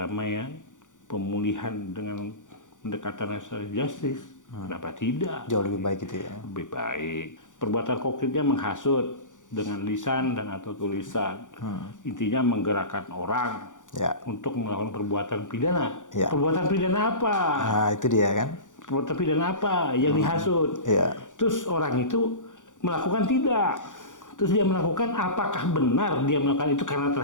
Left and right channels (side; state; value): right; late; 0.87 ms